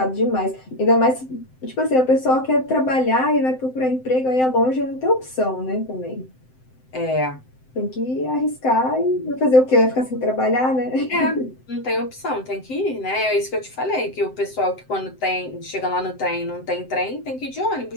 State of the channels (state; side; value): late; right; 7.8 ms